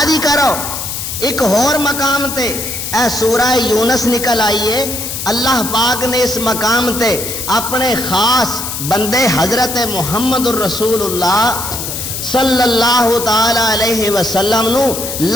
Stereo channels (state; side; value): noise; left; hiss, 5 dB below the sound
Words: دی کرو۔ ایک اور مقام تے اے سورہ یونس نکل آئیے، اللہ پاک نے اس مقام تے اپنے خاص بندے حضرت محمد الرسول اللہ صلی اللہ تعالی علیہ وسلم نو